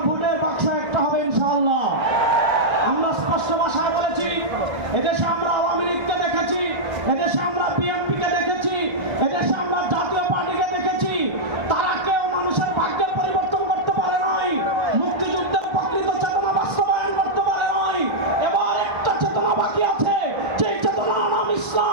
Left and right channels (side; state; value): left; late; 1.3 ms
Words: ভোটের বাক্স একটা হবে ইনশাআল্লাহ। আমরা স্পষ্ট ভাষায় বলেছি, এদেশে আমরা আওয়ামী লীগকে দেখেছি, এদেশে আমরা বিএনপিকে দেখেছি, এদেশে আমরা জাতীয় পার্টিকে দেখেছি। তারা কেউ মানুষের ভাগ্যের পরিবর্তন করতে পারে নাই, মুক্তিযুদ্ধের প্রকৃত চেতনা বাস্তবায়ন করতে পারে নাই। এবার একটা চেতনা বাকি আছে, যেই চেতনার নাম